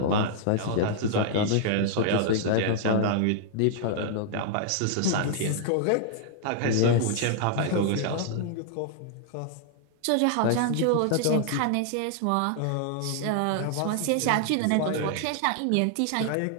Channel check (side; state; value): both; different; correlation -0.01